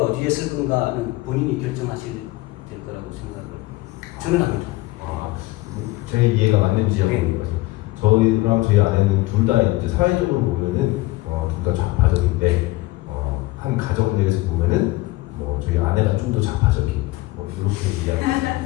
어디에 쓸 건가는 본인이 결정하실 될 거라고 저는 합니다. 제 이해가 맞는지 한번 네. 물어봐요. 저희랑 저희 아내는 둘 다 이제 사회적으로 보면은 둘 다 좌파적인데 한 가정 내에서 보면은 뭐 저희 아내가 좀 더 좌파적인 뭐 이렇게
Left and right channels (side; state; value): right; quieter; 19.8 dB